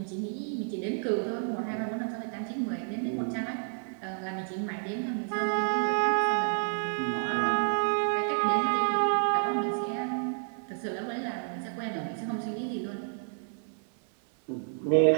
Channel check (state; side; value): silent; left; 58 dB below the other